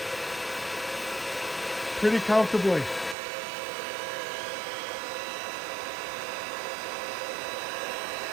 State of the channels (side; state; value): left; drops out; at 3.2 s